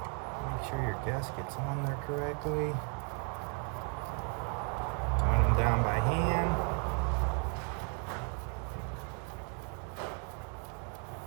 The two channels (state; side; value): quieter; left; 37.9 dB